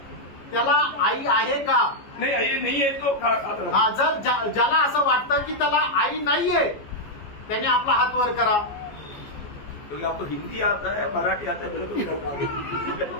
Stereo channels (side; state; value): right; late; 14 ms